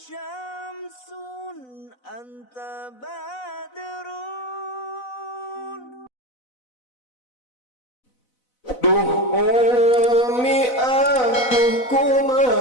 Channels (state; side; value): late; right; 4.0 ms